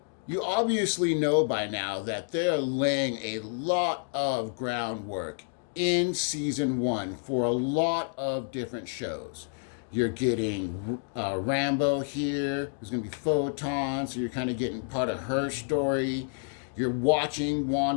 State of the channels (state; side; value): silent; right; digital silence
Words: you obviously know by now that they're laying a lot of groundwork in season 1 for a lot of different shows. You're getting Rambo here. There's going to be Photon, so you're kind of getting part of her story. You're watching